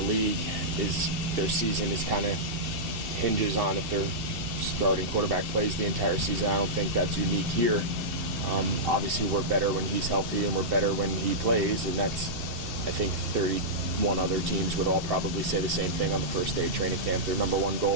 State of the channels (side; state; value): left; late; 2.7 ms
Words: league their season is kind of hinges on if their starting quarterback plays the entire season. I don't think that's unique here. Obviously, we're better when he's healthy, and we're better when he plays, and that's, I think, 31 other teams would all probably say the same thing on the first day of training camp. Their number one